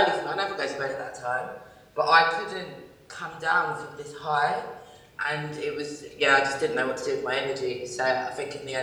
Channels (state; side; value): identical; both; correlation 1.00